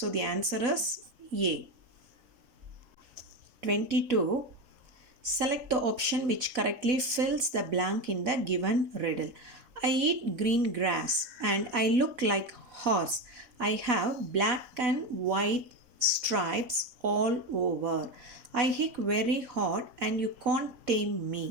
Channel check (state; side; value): late; left; 4.0 ms